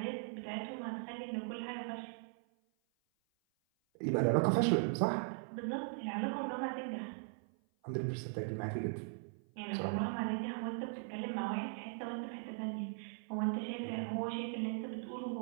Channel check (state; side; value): silent; left; 52 dB below the other